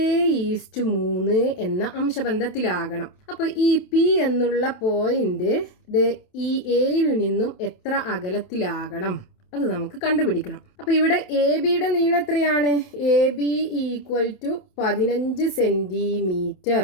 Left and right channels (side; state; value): right; late; 28 ms